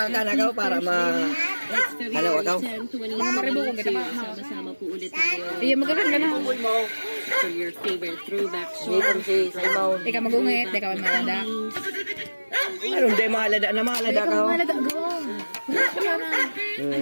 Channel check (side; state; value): both; inverted; correlation -1.00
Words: kanagaw para Hello, ikaw? Mga maribo kung kita pa. Sama-sama po ulit tayo Iya, magkakaroon ka na. for your favorite throwback Dito song. si Simon. Ikaw magungit, ikaw ang malada. Anong di mahalada na mahalada ka? Ikaw ang malada, gawa. Ay,